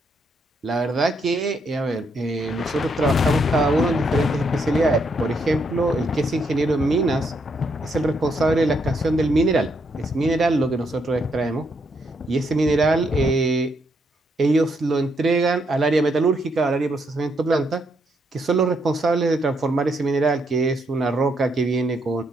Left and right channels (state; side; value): normal; both; correlation 0.76